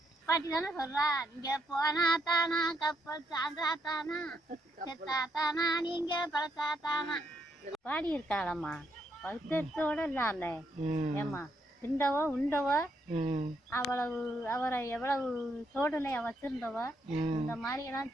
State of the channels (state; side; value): normal; both; correlation 0.76